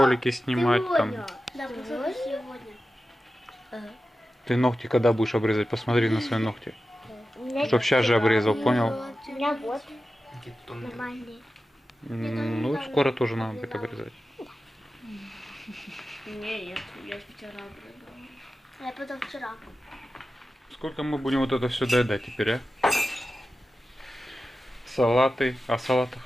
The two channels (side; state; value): both; normal; correlation 0.93